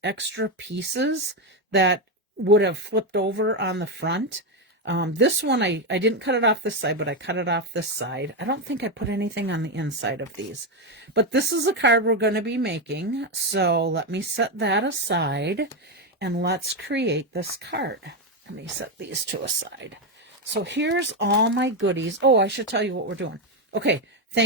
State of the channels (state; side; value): normal; both; correlation 0.08